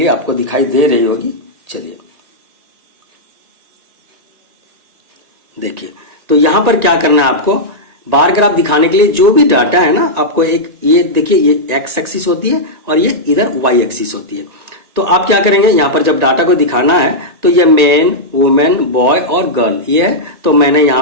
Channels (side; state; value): left; late; 1.9 ms